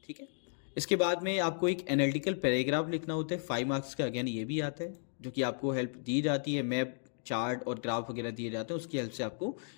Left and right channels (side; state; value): right; silent; digital silence